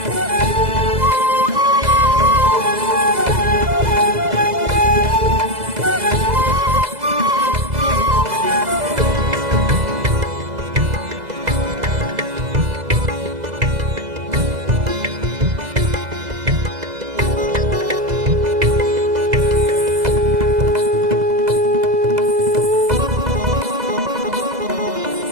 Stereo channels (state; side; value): late; left; 2.0 ms